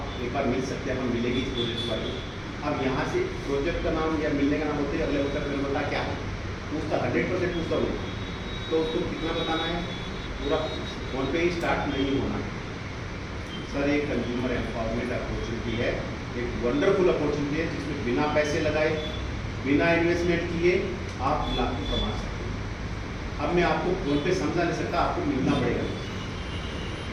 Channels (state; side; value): identical; both; correlation 1.00